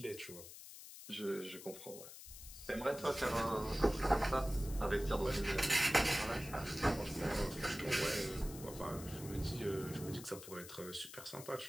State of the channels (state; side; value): noise; left; hiss, 14 dB below the sound